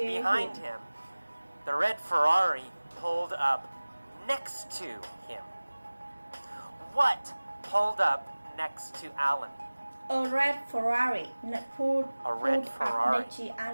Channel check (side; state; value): both; inverted; correlation -1.00